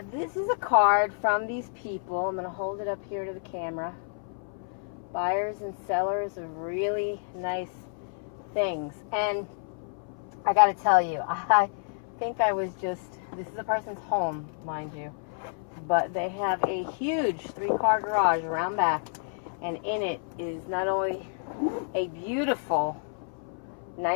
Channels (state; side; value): silent; right; 58 dB below the other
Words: this is a card from these people. I'm going to hold it up here to the camera. Buyers and sellers of really nice things. And I got to tell you, I think I was just, this is a person's home, mind you, but they have a huge 3-car garage around back, and in it is not only a beautiful